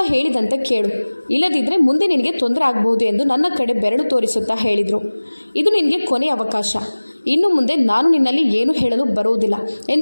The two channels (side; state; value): both; inverted; correlation -1.00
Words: ಹೇಳಿದಂತೆ ಕೇಳು. ಇಲ್ಲದಿದ್ದರೆ ಮುಂದೆ ನಿನಗೆ ತೊಂದರೆ ಆಗಬಹುದು ಎಂದು ನನ್ನ ಕಡೆ ಬೆರಳು ತೋರಿಸುತ್ತಾ ಹೇಳಿದರು. ಇದು ನಿನಗೆ ಕೊನೆಯ ಅವಕಾಶ. ಇನ್ನು ಮುಂದೆ ನಾನು ನಿನ್ನಲ್ಲಿ ಏನು ಹೇಳಲು ಬರುವುದಿಲ್ಲ